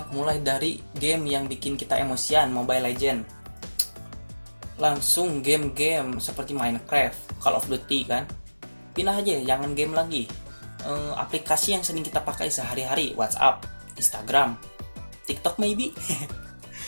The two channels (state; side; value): inverted; both; correlation -1.00